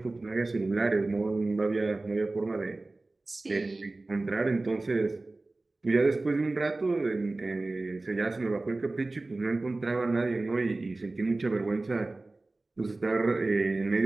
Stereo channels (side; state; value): left; quieter; 3.1 dB